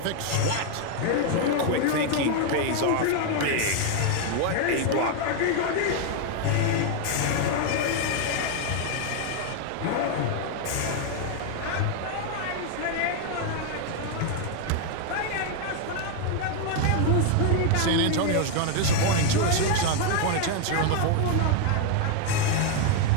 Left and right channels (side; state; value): both; different; correlation 0.01